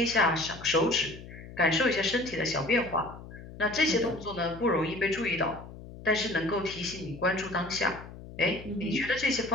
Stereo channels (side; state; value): left; noise; hum, 15 dB below the sound